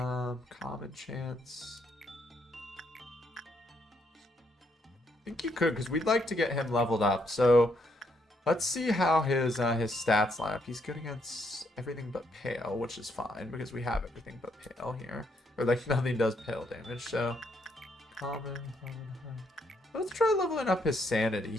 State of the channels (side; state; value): both; normal; correlation 0.74